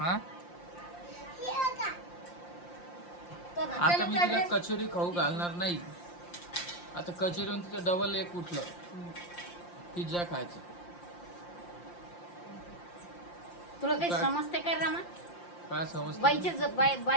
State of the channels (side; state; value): right; late; 5.7 ms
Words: आता मी तिला कचोरी खाऊ घालणार नाही. आता कचोरीहून तिचं डबल एक उठलं, पिझ्झा खायचं. तुला काही समजते का रमा? काय समजतं?